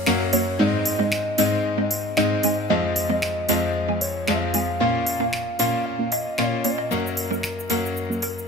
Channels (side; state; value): both; normal; correlation 0.50